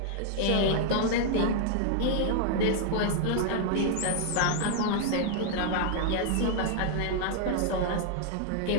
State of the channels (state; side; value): different; both; correlation 0.00